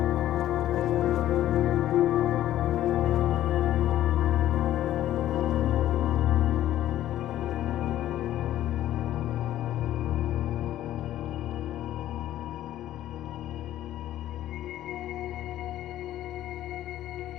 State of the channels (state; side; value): quieter; right; 13.0 dB